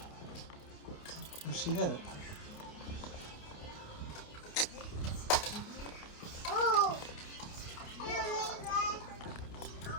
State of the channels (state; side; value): late; right; 28 ms